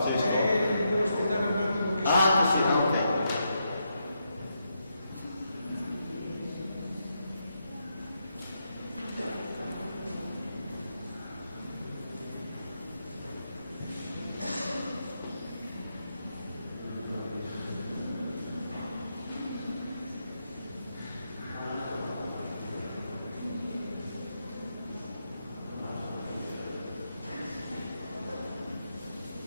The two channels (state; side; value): inverted; both; correlation -0.82